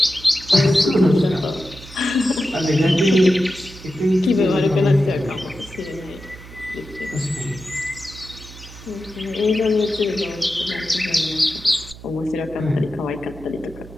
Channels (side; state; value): right; noise; hum, 17 dB below the sound